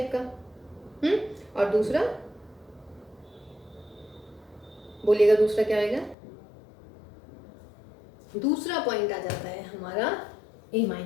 का, और दूसरा बोलिएगा दूसरा क्या आएगा, दूसरा पॉइंट आ जाता है हमारा a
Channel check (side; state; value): right; drops out; at 6.2 s